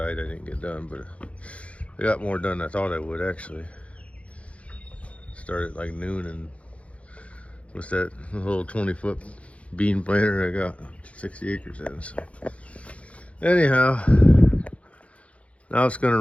I didn't get done, but I got more done than I thought I would actually. Started like noon, and what's that little 20-foot bean planter I got 60 acres in. So anyhow, now it's gonna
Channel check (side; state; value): right; late; 0.063 ms